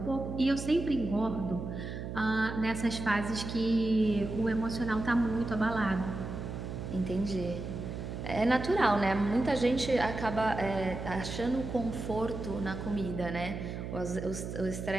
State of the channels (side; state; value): right; noise; hum, 6 dB below the sound